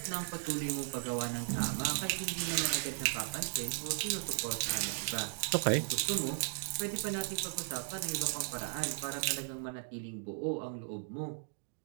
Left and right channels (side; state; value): left; silent; digital silence